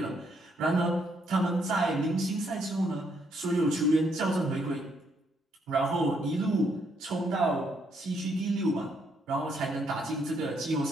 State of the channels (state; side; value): normal; both; correlation 0.73